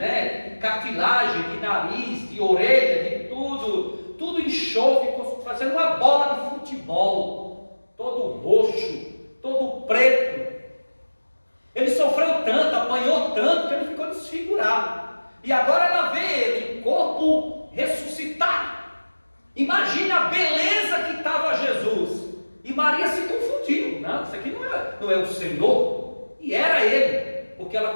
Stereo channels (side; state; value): both; inverted; correlation -1.00